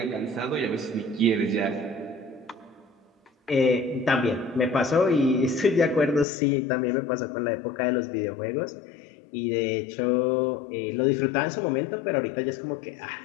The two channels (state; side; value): drops out; right; at 6.2 s